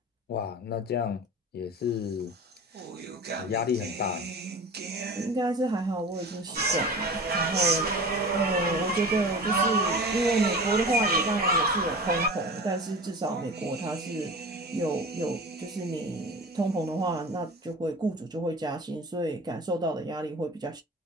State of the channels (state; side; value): normal; both; correlation 0.36